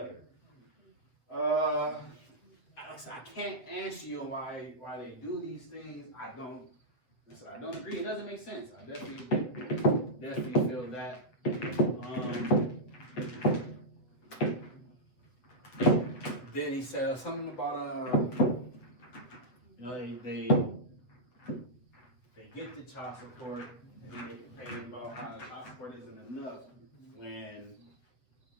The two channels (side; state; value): right; late; 8.0 ms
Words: I can't answer you why they do these things. I don't agree. It doesn't make sense. I definitely feel that. Then he said something about you know, they get the child support and they get complaining about how the child support isn't enough when